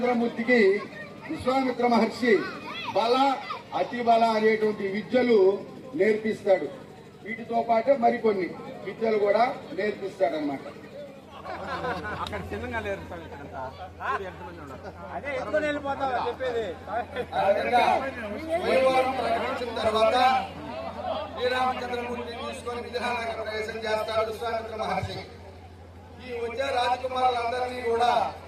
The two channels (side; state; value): both; identical; correlation 1.00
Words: విశ్వామిత్ర మహర్షి బల అతి బల అనేటువంటి విద్యలు నేర్పిస్తాడు. వీటితో పాటు మరికొన్ని విద్యలు కూడా నేర్పిస్తాడు అన్నమాట. ప్రకటించిన తర్వాత శ్రీరామచంద్రమూర్తిని తీసుకొని విజయనగరం ప్రవేశం చేస్తాడు విశ్వామిత్ర మహర్షి. ఈ వచ్చే రాజకుమారులందరినీ కూడా